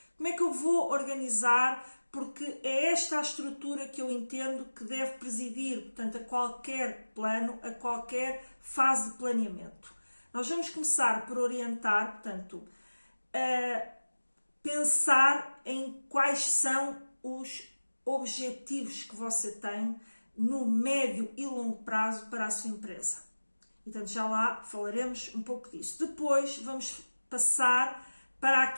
como é que eu vou organizar, porque é esta a estrutura que eu entendo que deve presidir, portanto, a qualquer plano, a qualquer fase de planeamento. Nós vamos começar por orientar, portanto, a pensar em quais são os objetivos que você tem no médio e longo prazo para a sua empresa. Então, já lá falaremos um pouco disso. Depois vamos passar para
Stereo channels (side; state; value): both; inverted; correlation -1.00